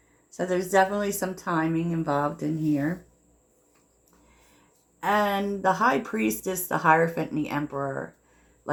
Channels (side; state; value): both; identical; correlation 1.00